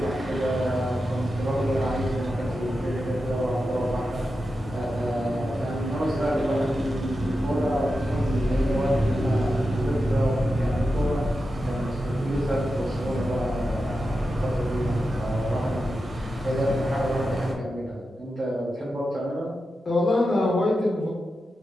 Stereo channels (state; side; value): normal; both; correlation 0.90